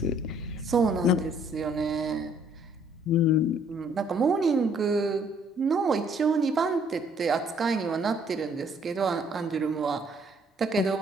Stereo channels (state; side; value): normal; both; correlation 0.63